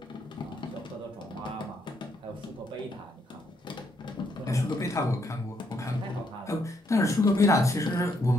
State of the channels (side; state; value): both; normal; correlation 0.74